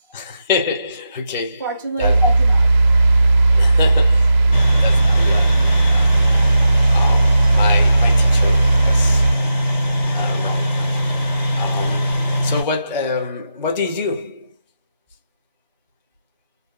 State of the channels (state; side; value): inverted; both; correlation -0.89